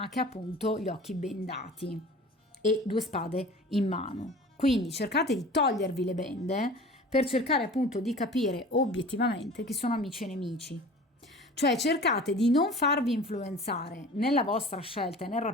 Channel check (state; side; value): normal; both; correlation 0.41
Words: che ha appunto gli occhi bendati e 2 spade in mano. Quindi cercate di togliervi le bende per cercare appunto di capire obiettivamente chi sono amici e nemici. Cioè cercate di non farvi influenzare nella vostra scelta e nel